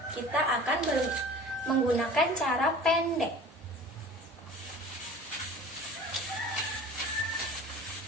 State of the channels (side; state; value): both; normal; correlation 0.42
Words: kita akan menggunakan cara pendek.